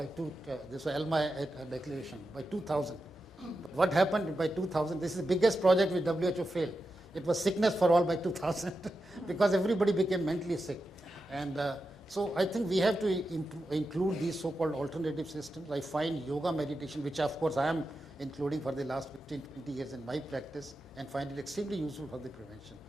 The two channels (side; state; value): both; normal; correlation 0.90